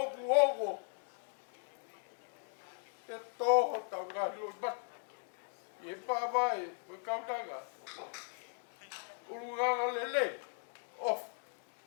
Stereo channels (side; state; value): right; silent; 52 dB below the other